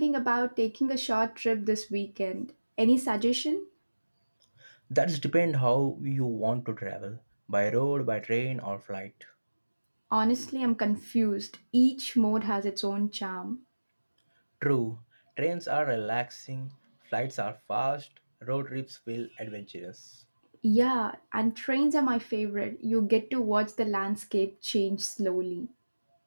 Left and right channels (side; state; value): both; inverted; correlation -1.00